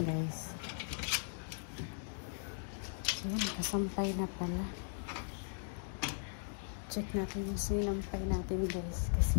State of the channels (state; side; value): silent; right; digital silence